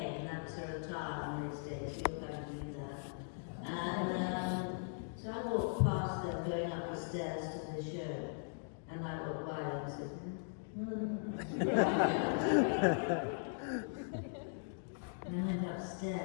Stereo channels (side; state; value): right; silent; digital silence